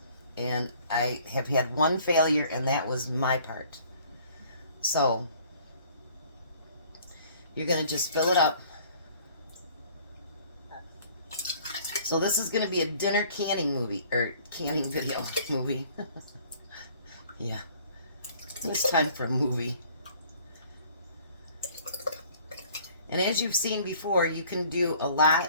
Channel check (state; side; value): inverted; both; correlation -0.55